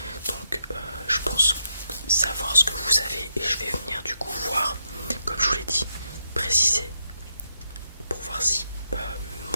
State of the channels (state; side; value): inverted; both; correlation -0.83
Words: Donc je pense savoir ce que vous avez et je vais venir du coup voir, comme je vous l'ai dit, préciser pour voir si